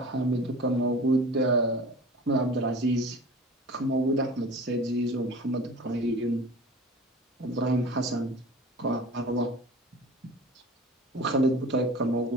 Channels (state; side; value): normal; both; correlation 0.40